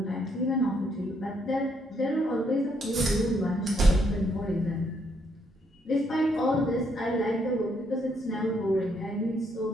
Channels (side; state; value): both; normal; correlation 0.73